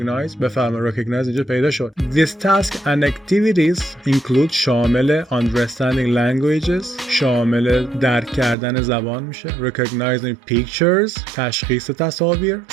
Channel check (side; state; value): left; drops out; at 8.6 s